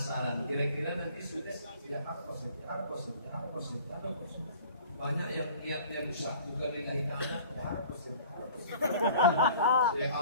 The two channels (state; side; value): inverted; both; correlation -0.47